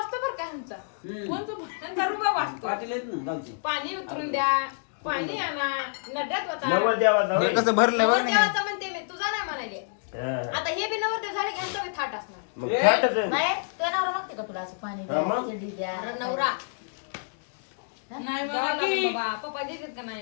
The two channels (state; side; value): silent; right; digital silence